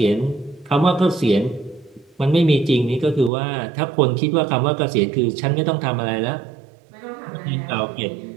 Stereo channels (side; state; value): left; drops out; at 3.3 s